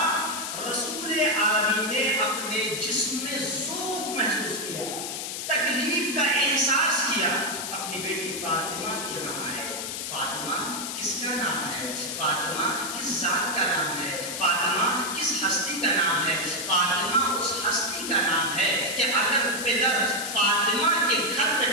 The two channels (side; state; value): left; noise; hiss, 5 dB below the sound